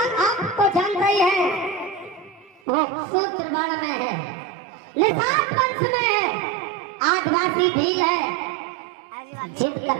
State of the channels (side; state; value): left; drops out; at 2.6 s